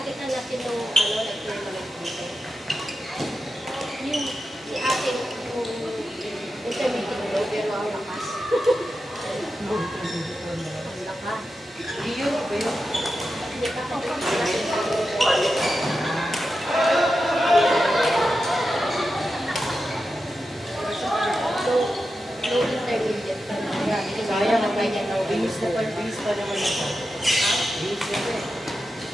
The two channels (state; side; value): normal; both; correlation 0.90